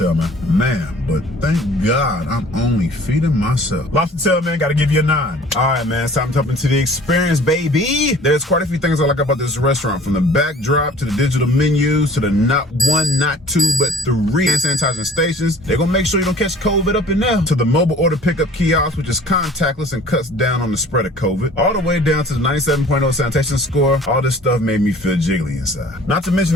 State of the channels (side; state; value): both; normal; correlation 0.50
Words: man. But thank God I'm only feeding myself. Lobster tail, man, gotta give you a 9. All right, man, it's time to jump into the experience, baby. There's quite a few things I like about this restaurant, from the backdrop to the digital menus to the not 1, not 2, but 3 hand sanitizing stations. They're gonna make sure you don't catch COVID up in there. To the mobile order pickup kiosk, which is contactless and cuts down on the spread of COVID. All the way down to the 97.0 sanitation score. All this stuff made me feel jiggly inside. Not to mention,